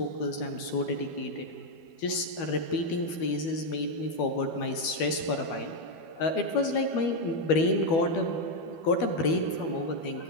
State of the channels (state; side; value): late; right; 12 ms